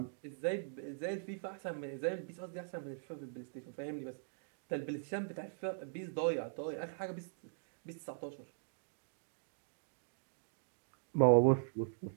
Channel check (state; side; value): silent; left; digital silence